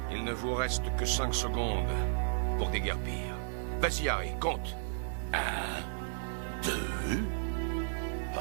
Il ne vous reste que 5 secondes pour déguerpir. Vas-y, Harry, compte. 2.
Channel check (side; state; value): left; silent; 55 dB below the other